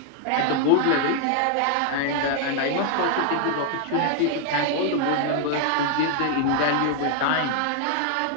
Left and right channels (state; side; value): different; both; correlation 0.00